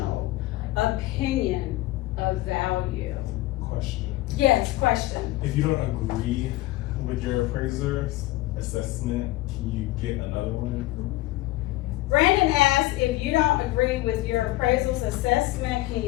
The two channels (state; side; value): quieter; right; 17.8 dB